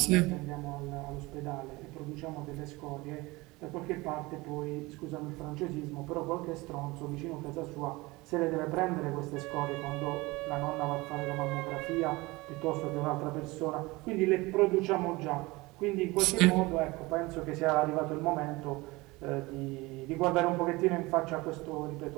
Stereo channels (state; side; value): quieter; left; 22.3 dB